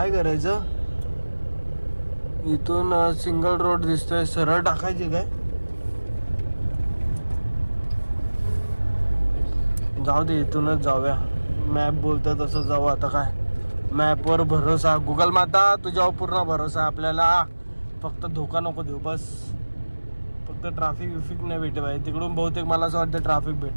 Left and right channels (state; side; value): inverted; both; correlation -1.00